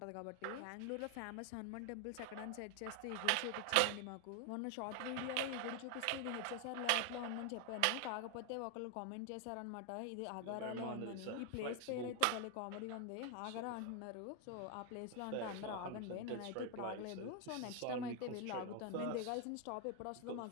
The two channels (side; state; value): both; different; correlation 0.01